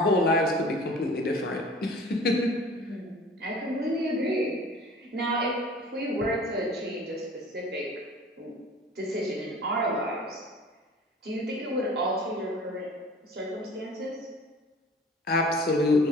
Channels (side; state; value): both; normal; correlation 0.45